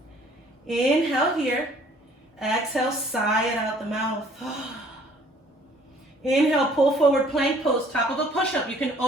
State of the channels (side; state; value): both; normal; correlation 0.56